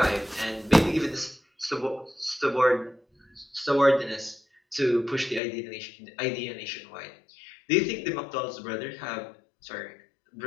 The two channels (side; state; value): right; drops out; at 5.4 s